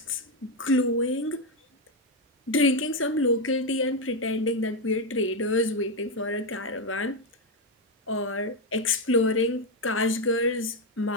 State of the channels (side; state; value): both; normal; correlation 0.06